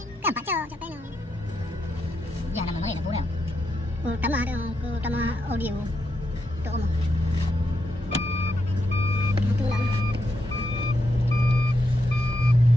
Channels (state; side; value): normal; both; correlation 0.82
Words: Kan pak cok cok peno. Ya nama mana nak boleh. Utama audio. Tu omong. Tu lah.